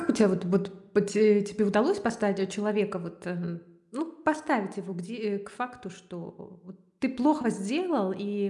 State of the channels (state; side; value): identical; both; correlation 1.00